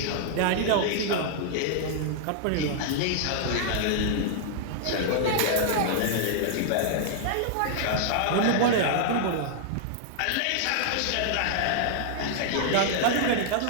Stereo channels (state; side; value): different; both; correlation -0.01